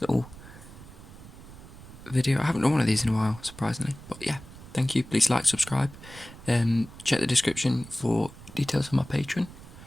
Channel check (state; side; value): noise; right; rumble, 17 dB below the sound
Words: little video. I haven't done one of these in a while, surprisingly. But yeah, thank you. Please like, subscribe. Check the description for details on my Patreon.